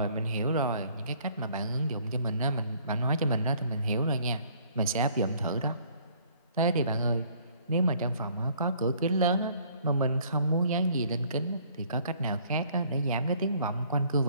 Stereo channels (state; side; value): inverted; both; correlation -0.59